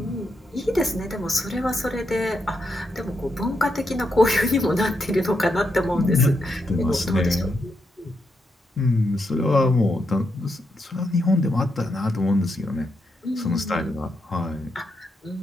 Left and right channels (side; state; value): both; normal; correlation 0.82